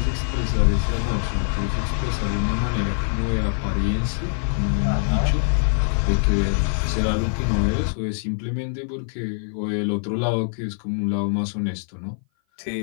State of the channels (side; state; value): right; silent; 57 dB below the other